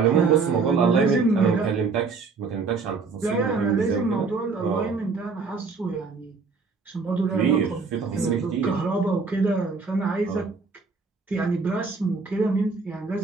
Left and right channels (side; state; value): left; quieter; 4.6 dB